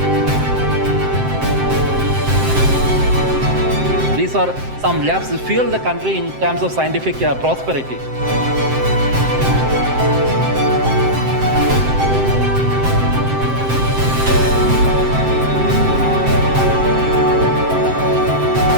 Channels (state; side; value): late; left; 7.7 ms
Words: These are some labs that fuel the country in terms of scientific prosperity.